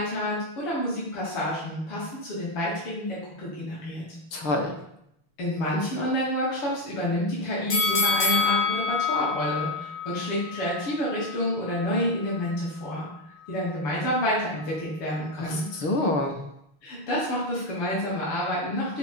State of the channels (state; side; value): late; right; 6.5 ms